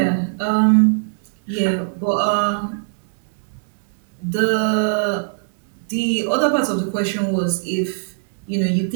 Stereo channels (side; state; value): left; silent; digital silence